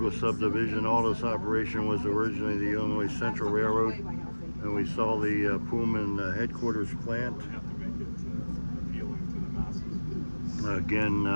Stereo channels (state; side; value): inverted; both; correlation -1.00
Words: subdivision. All this operation was originally the Illinois Central Railroad, and we saw the Pullman headquarters plant. Again,